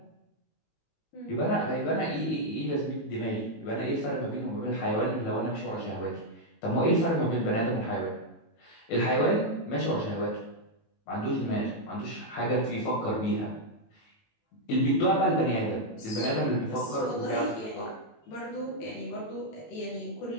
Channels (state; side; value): late; right; 18 ms